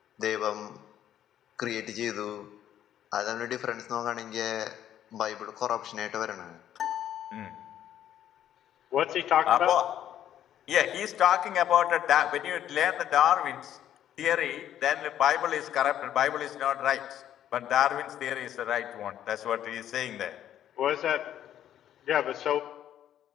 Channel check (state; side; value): quieter; right; 10.9 dB